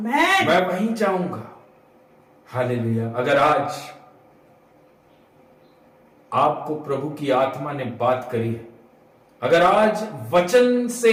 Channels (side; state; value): both; identical; correlation 1.00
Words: मैं वहीं जाऊंगा। हालेलुया। अगर आज आपको प्रभु की आत्मा ने बात करी है, अगर आज वचन